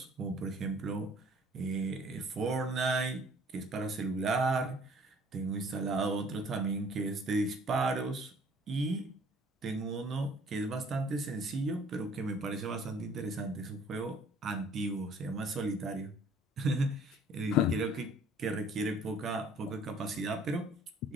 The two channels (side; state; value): both; normal; correlation 0.55